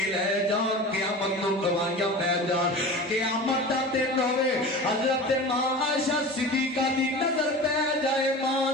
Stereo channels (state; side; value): normal; both; correlation 0.34